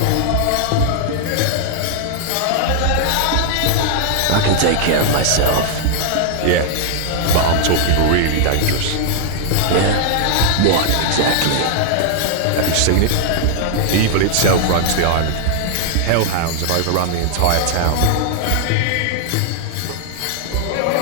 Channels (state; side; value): different; both; correlation 0.00